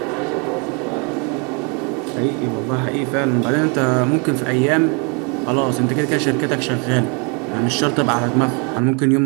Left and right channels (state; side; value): quieter; left; 34.5 dB